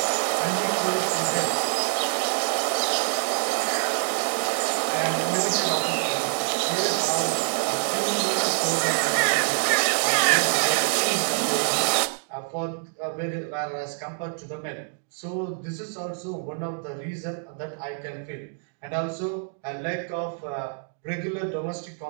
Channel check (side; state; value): left; silent; 61 dB below the other